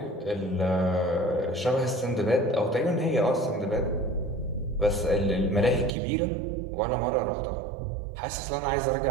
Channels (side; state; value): left; drops out; at 5.9 s